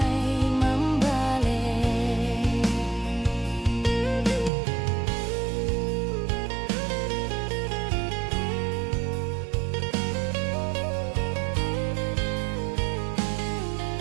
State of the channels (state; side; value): drops out; left; at 4.5 s